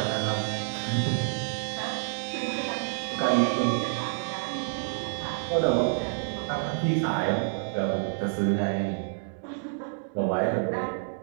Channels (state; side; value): silent; left; 59 dB below the other